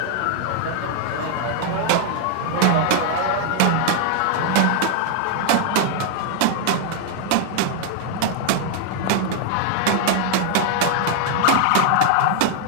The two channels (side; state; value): both; different; correlation 0.00